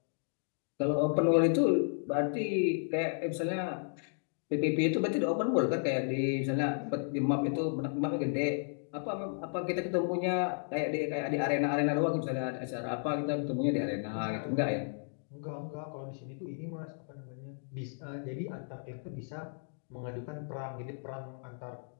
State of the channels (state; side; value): silent; right; digital silence